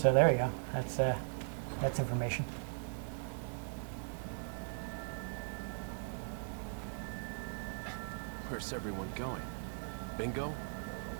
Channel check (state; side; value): silent; left; 52 dB below the other